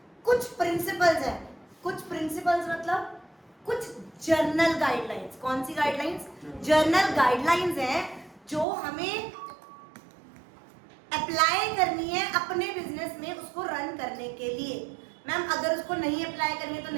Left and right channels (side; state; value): left; drops out; at 8.7 s